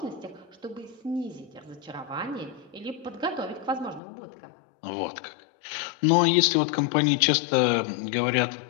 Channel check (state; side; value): drops out; right; at 4.0 s